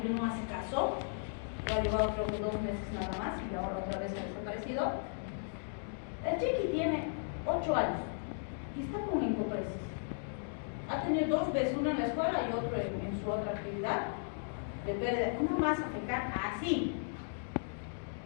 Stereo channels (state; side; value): silent; right; digital silence